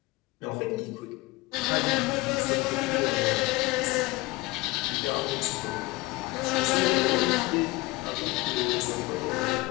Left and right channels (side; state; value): right; quieter; 21.4 dB